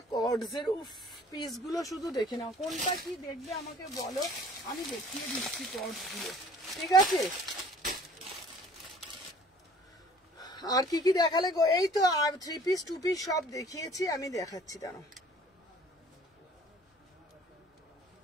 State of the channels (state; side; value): normal; both; correlation 0.52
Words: কর্ডস এর। উফ পিসগুলো শুধু দেখে নাও, কোনটা কি দেখবে আমাকে বলো, আমি দেখিয়ে দিচ্ছি কর্ডস গুলো, ঠিক আছে। আর কি কি দেখালে গো? এই তো আর 3 পিস 2 পিস সব দেখিয়েছি, আমি দেখাচ্ছি, দাঁড়াও